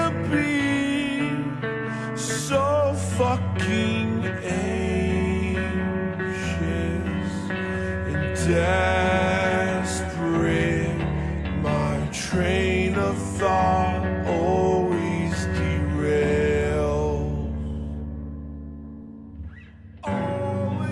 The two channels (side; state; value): both; identical; correlation 1.00